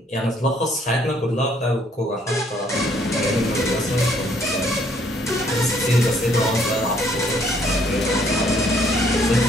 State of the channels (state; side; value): normal; both; correlation 0.65